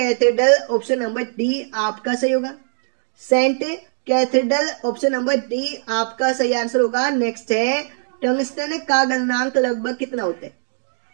option number D आपका सही होगा। Saint Cathedral, option number D आपका सही आंसर होगा। नेक्स्ट है, टंगस्टन का गलनांक लगभग कितना होता है?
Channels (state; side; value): silent; left; digital silence